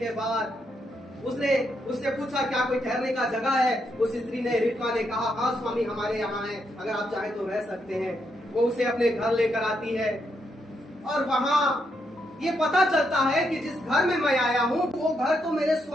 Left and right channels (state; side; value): normal; both; correlation 0.79